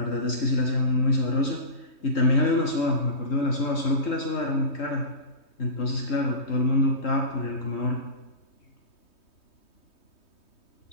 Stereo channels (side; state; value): right; late; 3.2 ms